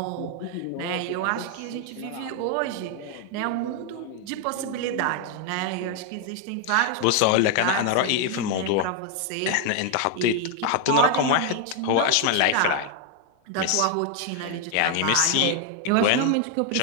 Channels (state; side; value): different; both; correlation 0.00